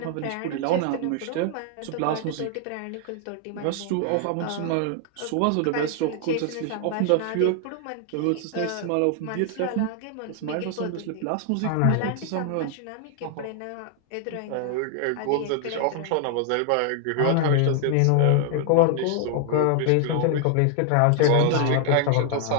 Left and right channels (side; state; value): both; different; correlation 0.00